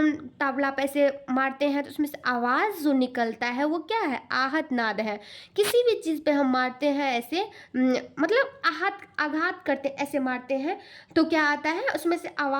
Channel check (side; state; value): both; identical; correlation 1.00